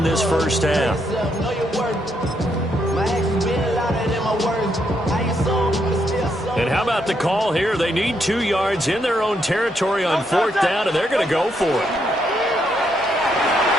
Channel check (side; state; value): both; normal; correlation 0.77